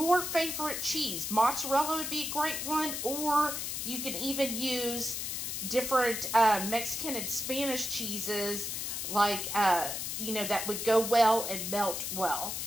favorite cheese. Mozzarella would be a great one. Or you can even use different Mexican and Spanish cheeses. Like, you know, that would go well and melt well.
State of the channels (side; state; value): left; noise; hiss, 3 dB below the sound